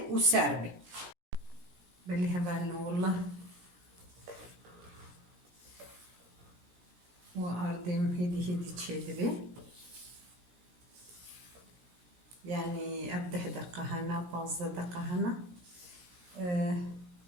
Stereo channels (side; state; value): left; late; 17 ms